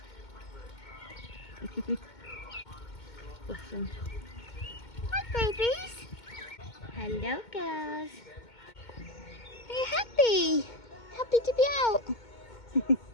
Listen. Hi, babies. Hello, girls. Are you happy? Happy to be out?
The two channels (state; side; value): late; right; 2.2 ms